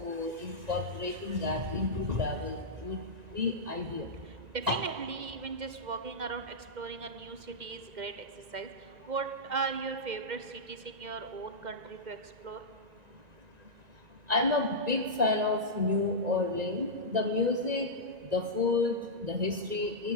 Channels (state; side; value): late; left; 1.9 ms